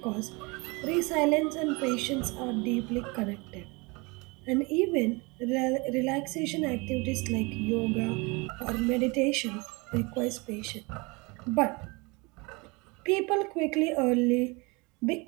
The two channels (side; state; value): left; quieter; 27.4 dB